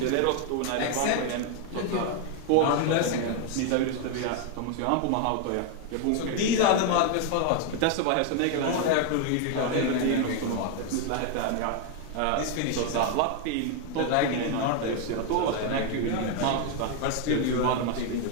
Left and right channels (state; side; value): different; both; correlation 0.00